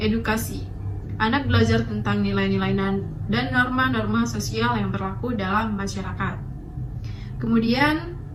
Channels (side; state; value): both; identical; correlation 1.00